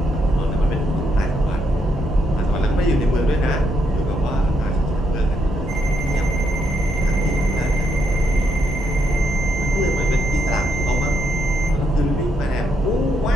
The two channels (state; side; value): normal; both; correlation 0.77